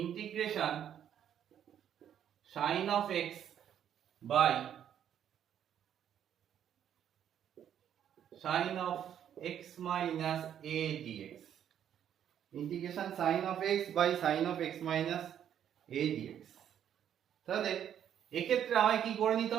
sin of x by sin of x minus a dx। Integration sin of x by sin of x minus a dx। তাহলে এক্ষেত্রে আমায় কি করে নিতে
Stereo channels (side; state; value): left; quieter; 9.7 dB